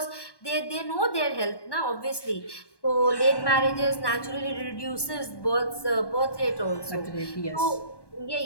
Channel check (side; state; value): right; late; 1.1 ms